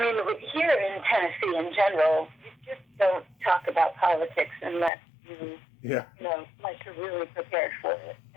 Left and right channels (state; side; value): drops out; right; at 4.9 s